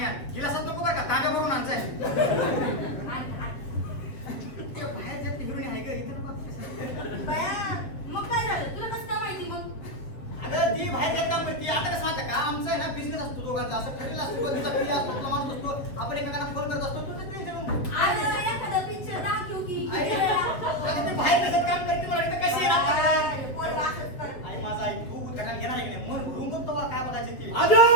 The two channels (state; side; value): late; right; 7.5 ms